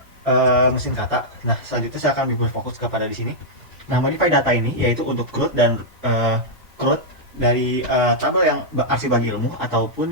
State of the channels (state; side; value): normal; both; correlation -0.07